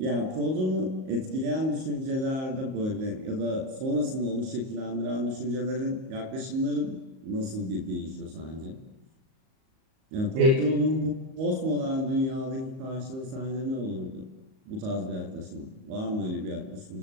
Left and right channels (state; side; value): late; left; 38 ms